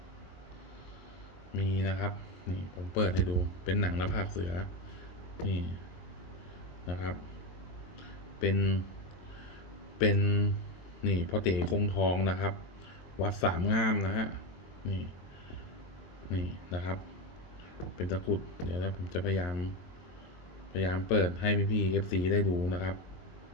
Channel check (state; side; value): late; right; 22 ms